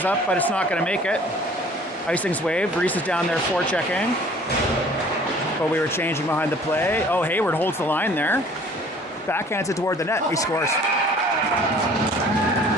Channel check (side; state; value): both; normal; correlation 0.52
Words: up, but it's not going to make it. Icing's waved. Reese is down there forechecking. But we were changing behind the play. Oh, Hayward holds the line there. Backhands it toward the net. He scores.